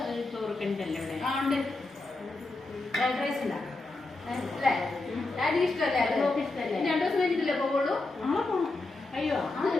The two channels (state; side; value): quieter; right; 3.2 dB